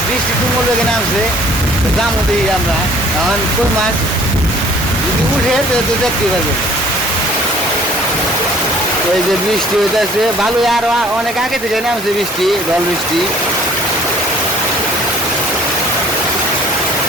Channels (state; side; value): normal; both; correlation 0.55